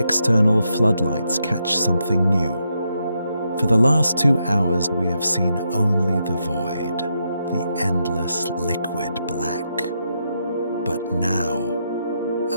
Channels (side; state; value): both; inverted; correlation -0.82